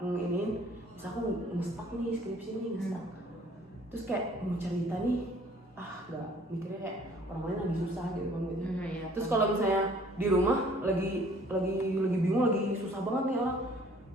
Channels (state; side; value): normal; both; correlation 0.56